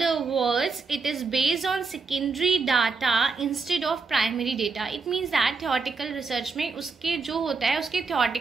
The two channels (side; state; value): left; quieter; 4.5 dB